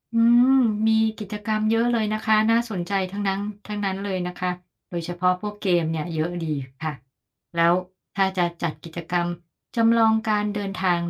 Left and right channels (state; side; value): identical; both; correlation 1.00